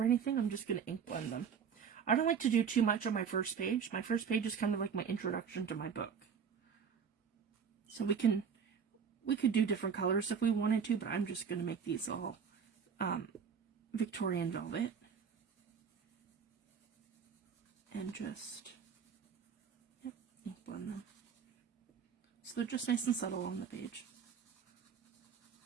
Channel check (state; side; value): quieter; left; 6.8 dB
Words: anything. I'm just going to ink blend them. I don't like to do too much on my first page. My first page is kind of like my introduction to my book. So we could do different colors if we wanted to, but I'm just going to make these all Victorian Velvet. And just, yep, ink blend them. So they're just nice and subtle on the page.